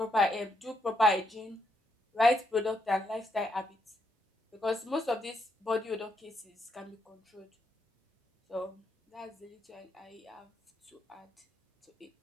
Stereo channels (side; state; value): both; normal; correlation 0.78